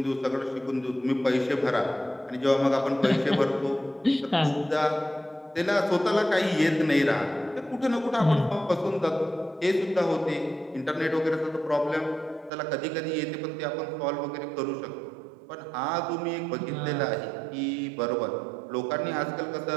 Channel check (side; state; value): left; drops out; at 12.5 s